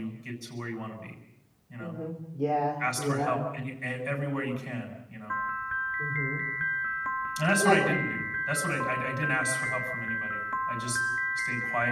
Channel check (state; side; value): identical; both; correlation 1.00